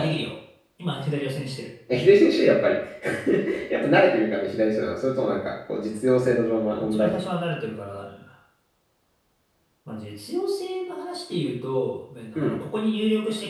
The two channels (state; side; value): identical; both; correlation 1.00